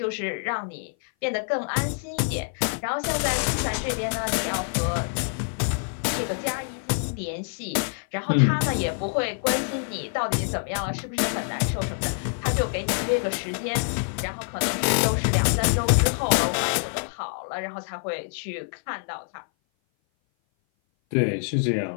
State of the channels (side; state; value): right; silent; 57 dB below the other